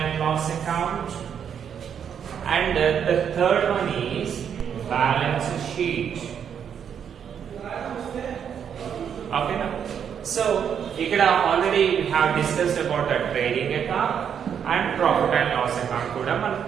loss account, and the third one is balance sheet. Okay now, so here already we have discussed about the trading account and profit and loss account kuda man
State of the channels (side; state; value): left; quieter; 8.0 dB